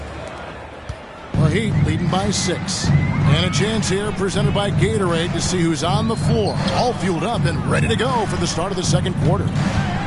The Heat leading by 6. And a chance here presented by Gatorade to see who's on the floor. All fueled up and ready to go for the start of the second quarter.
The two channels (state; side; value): identical; both; correlation 1.00